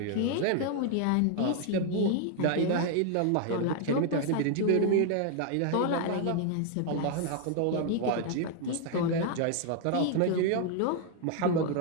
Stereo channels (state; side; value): different; both; correlation 0.00